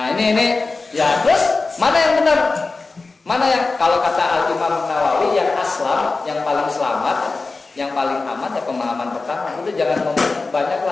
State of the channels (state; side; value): quieter; right; 3.8 dB